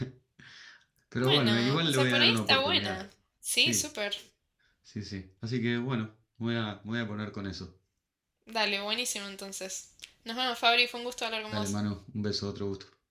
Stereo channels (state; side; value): identical; both; correlation 1.00